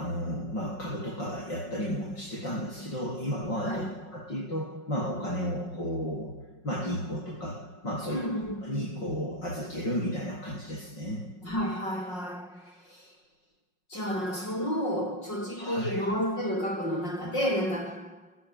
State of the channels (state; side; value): late; right; 5.5 ms